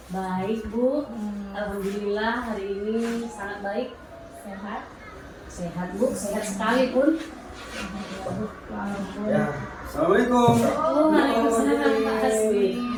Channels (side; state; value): both; identical; correlation 1.00